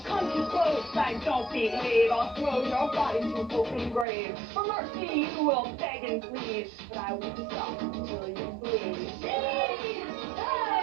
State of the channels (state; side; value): drops out; left; at 4.0 s